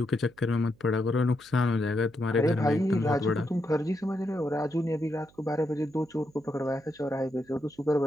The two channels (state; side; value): noise; right; hum, 29 dB below the sound